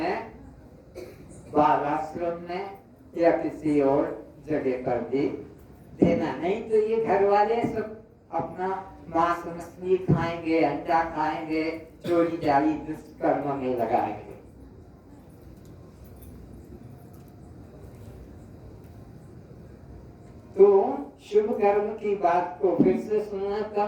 बाल आश्रम में या किसी और जगह पर भी देना। नहीं तो ये घर वाले सब अपना मांस मछली खाएंगे, अंडा खाएंगे, चोरी जारी दुष्कर्म में लगाएंगे। तो शुभ कर्म की बात को फिर से सुनाता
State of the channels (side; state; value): both; identical; correlation 1.00